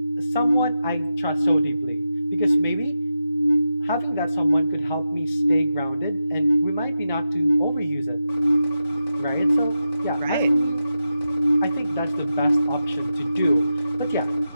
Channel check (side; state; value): both; inverted; correlation -0.89